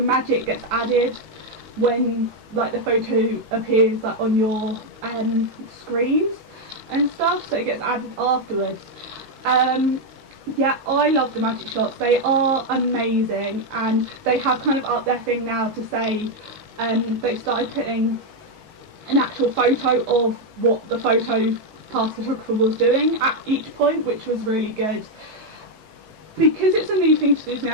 gets added when like the photo appears like on your screens and stuff, so it gets added afterwards. Yeah, I love the magic shots. They are amazing, and they have kind of upped their thing now to say they started putting an actual photo of what the photo pass photographer was doing at each point, which was really good. Because it's a new thing to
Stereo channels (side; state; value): left; late; 19 ms